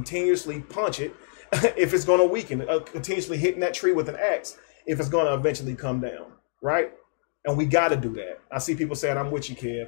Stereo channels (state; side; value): silent; right; digital silence